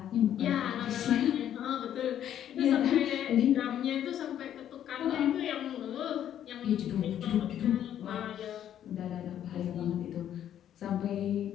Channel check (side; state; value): right; quieter; 10.5 dB